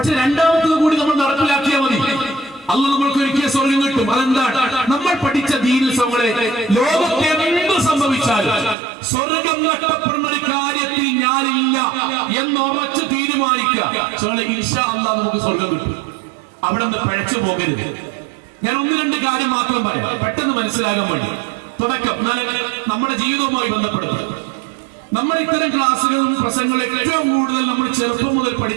രണ്ടാമത്തത് കൂടി നമ്മൾ നടപ്പിലാക്കിയാൽ മതി, അല്ലാഹ് നമ്മൾക്ക് ഒരുക്കിയ സ്വർഗം കിട്ടും. അതെന്താണ്? നമ്മൾ പഠിച്ച ദീനിൽ ലോകത്തെ എന്ത് സംഭവിച്ചാലും സ്വർഗം നഷ്ടപ്പെടുന്ന ഒരു കാര്യത്തിൽ ഞാനില്ല എന്നുറച്ച് തീരുമാനിക്കുക. ഇൻഷാ അല്ലാഹ് നമുക്ക് സ്വർഗം കിട്ടും. അവിടെ നിന്ന് പഴച്ചു പോകരുത്. ഞാൻ ഒന്ന് രണ്ട് കാര്യം മാത്രം പറയാം, പെട്ടെന്ന് മനസ്സിലാകാൻ വേണ്ടി. തുടക്കം നമ്മുടെ ജീവിതവുമായി ബന്ധപ്പെടുത്തും. നമ്മൾ ഇത്തരം ക്ലാസ്സുകളും പ്രസംഗങ്ങളും ഏറ്റവും കൂടുതൽ നമ്മൾ ചെറുപ്പം മുതൽ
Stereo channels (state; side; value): drops out; left; at 8.8 s